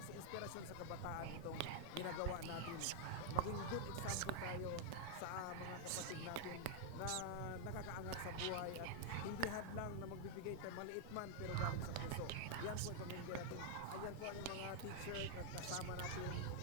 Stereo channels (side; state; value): both; different; correlation 0.00